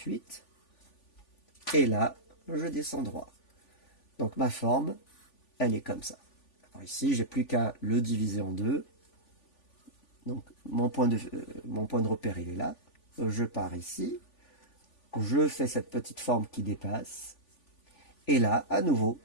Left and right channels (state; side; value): late; right; 3.5 ms